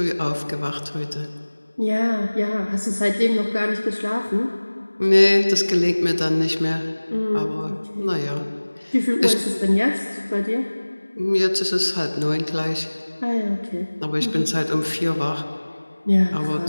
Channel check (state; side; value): inverted; both; correlation -1.00